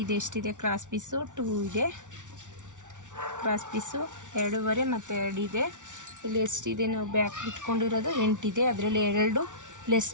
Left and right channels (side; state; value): left; late; 0.86 ms